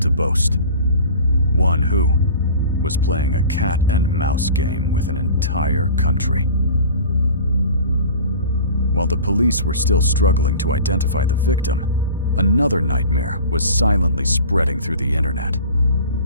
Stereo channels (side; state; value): both; inverted; correlation -0.40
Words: to boast. One who was playing a cat and mouse game with an entire country. While the police were still struggling to identify the victim, another nightmare was silently spreading through the internet.